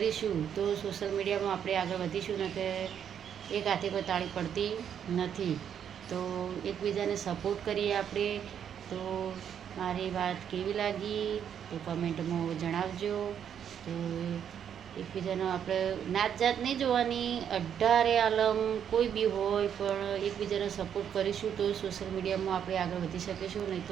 તો સોશિયલ મીડિયામાં આપણે આગળ વધીશું ને કે એક હાથે કોઈ તાળી પડતી નથી. તો એકબીજાને સપોર્ટ કરીએ આપણે. તો મારી વાત કેવી લાગી તો કમેન્ટમાં જણાવજો. તો એકબીજાનો આપણે નાત જાત નહીં જોવાની, 18 આલમ કોઈ બી હોય પણ એકબીજાને સપોર્ટ કરીશું તો સોશિયલ મીડિયામાં આપણે આગળ વધી શકીશું, નહીં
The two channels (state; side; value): quieter; left; 8.7 dB